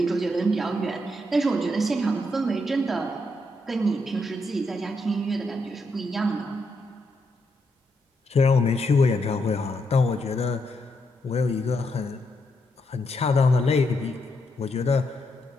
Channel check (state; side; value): normal; both; correlation 0.80